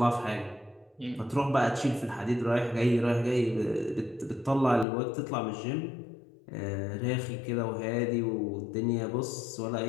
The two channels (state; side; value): drops out; right; at 4.9 s